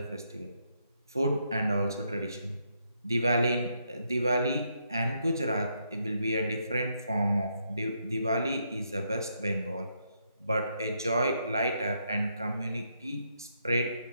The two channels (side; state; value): both; inverted; correlation -0.77